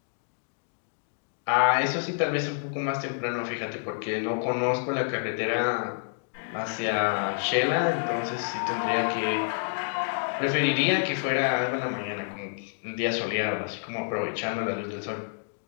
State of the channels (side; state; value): right; silent; digital silence